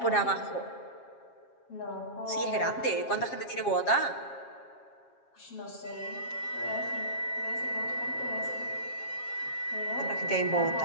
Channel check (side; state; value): right; late; 7.4 ms